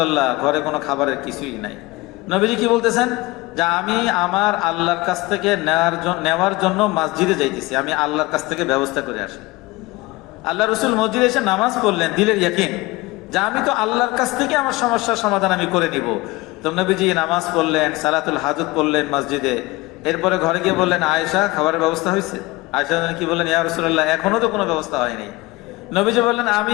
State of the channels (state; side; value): quieter; right; 21.5 dB